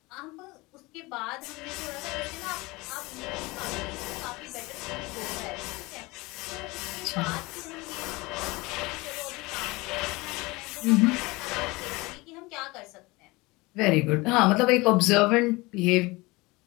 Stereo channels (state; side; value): quieter; right; 22.9 dB